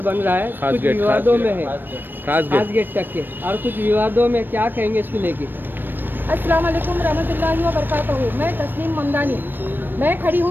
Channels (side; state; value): left; late; 0.094 ms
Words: बन रहा है कुछ विवादों में है, खास गेट तक के, और कुछ विवादों में, क्या कहेंगे इसको लेके? अस्सलाम वालेकुम रहमतुल्लाहि व बरकातहू। मैं तस्लीम ममदानी, मैं खड़ी